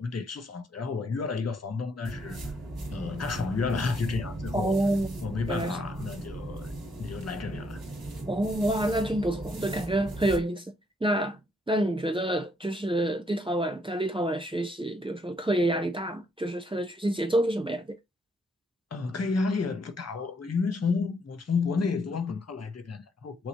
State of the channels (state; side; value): normal; both; correlation 0.71